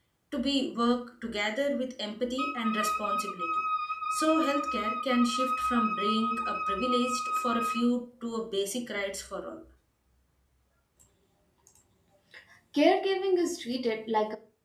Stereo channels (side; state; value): both; identical; correlation 1.00